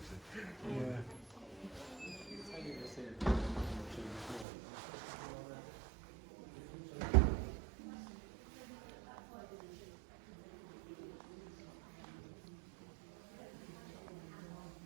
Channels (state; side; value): drops out; left; at 4.5 s